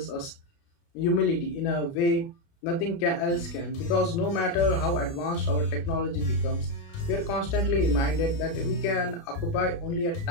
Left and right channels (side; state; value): right; late; 29 ms